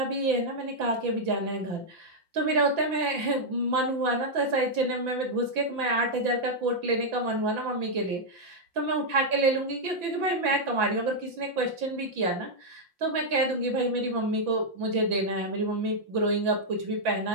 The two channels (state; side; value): late; left; 5.9 ms